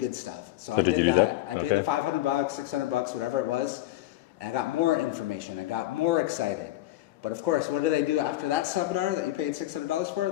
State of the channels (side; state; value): right; quieter; 15.9 dB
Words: stuff. So I did that. I paid the $500, $600, whatever it was. And I got more information. I got more excited. But of course, what do they do after that seminar that you paid $600 for?